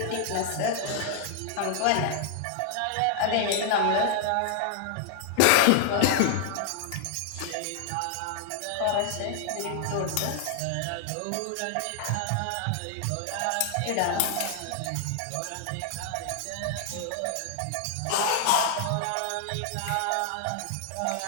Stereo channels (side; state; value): both; different; correlation 0.00